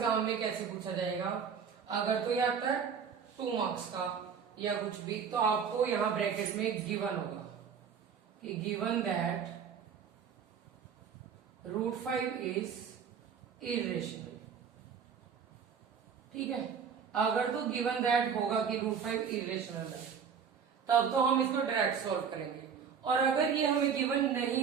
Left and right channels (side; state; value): left; quieter; 6.9 dB